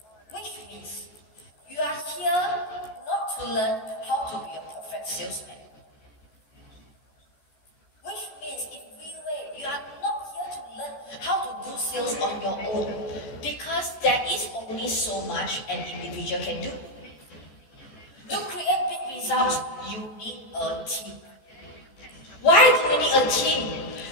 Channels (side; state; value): right; late; 14 ms